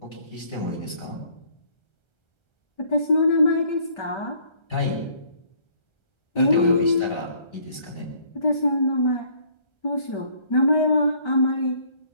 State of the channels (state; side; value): late; right; 1.3 ms